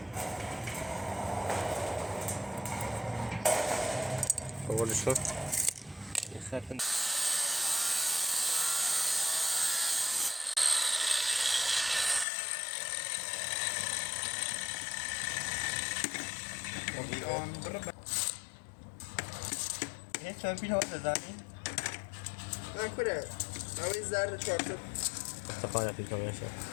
بقولش کن یه خط یه چمپیل ها بزنیم من کنه نوی زرد چارتر استفاده پیل کنیم شد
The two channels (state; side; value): drops out; right; at 12.2 s